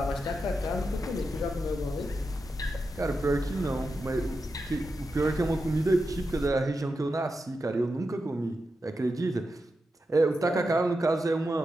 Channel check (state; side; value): normal; both; correlation 0.89